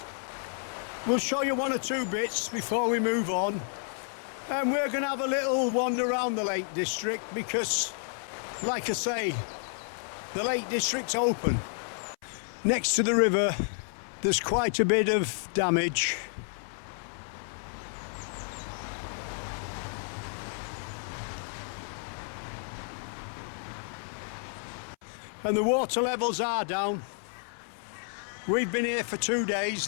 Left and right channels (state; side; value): silent; right; 57 dB below the other